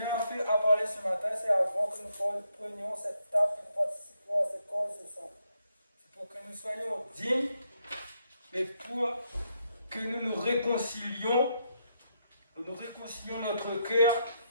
a parlé ce matin, c'est avant que nous prenions cette table, que nous participions à ce corps ce sang. C'est pour que nous soyons dignes, mais pour que nous réconcilions notre cœur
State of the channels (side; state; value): both; inverted; correlation -0.78